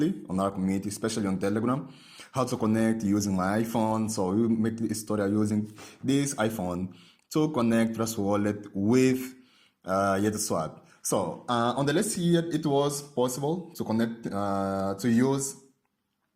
on our community, especially on Telegram, how to connect using my iPhone. So we make this tutorial using this iPhone to connect Trust Wallet with YetuSwap. So on the list here, it was possible to connect, to use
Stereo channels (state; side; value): identical; both; correlation 1.00